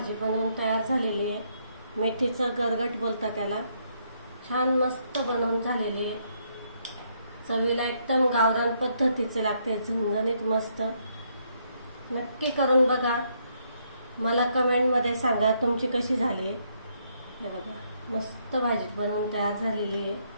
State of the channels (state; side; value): inverted; both; correlation -0.73